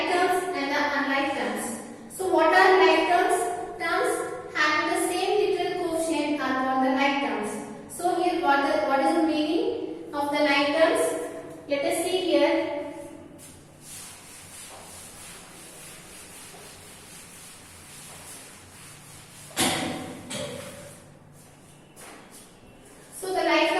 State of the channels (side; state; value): both; identical; correlation 1.00